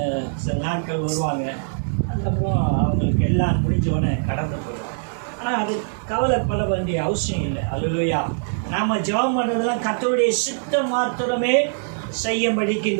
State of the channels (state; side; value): silent; left; 64 dB below the other